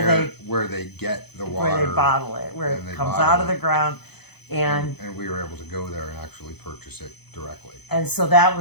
they get the water, where they bottle it, where it comes out of the ground, and we were able to go there and actually purchase it directly. And so that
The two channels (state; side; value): late; right; 0.98 ms